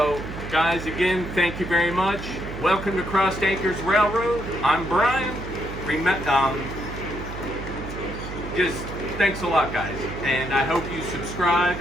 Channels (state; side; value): noise; right; hum, 9 dB below the sound